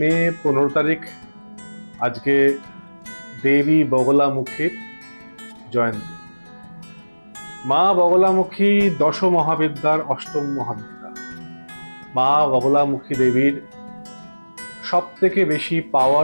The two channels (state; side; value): inverted; both; correlation -1.00